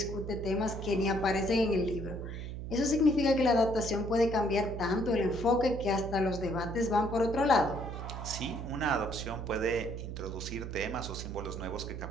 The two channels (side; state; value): right; noise; hum, 7 dB below the sound